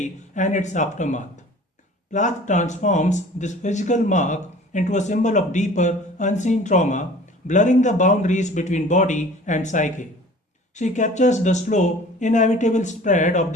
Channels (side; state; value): both; normal; correlation 0.46